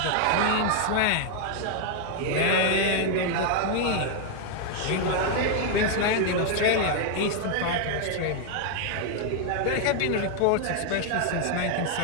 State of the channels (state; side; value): different; both; correlation 0.00